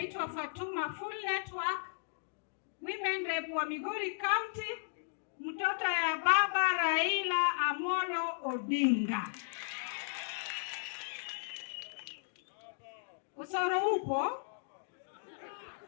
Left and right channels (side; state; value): right; silent; digital silence